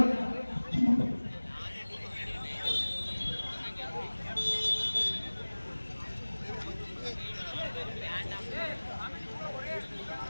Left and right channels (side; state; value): both; inverted; correlation -1.00